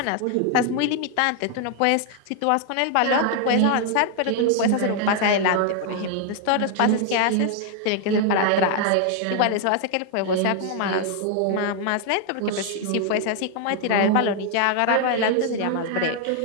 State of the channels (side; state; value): both; different; correlation 0.00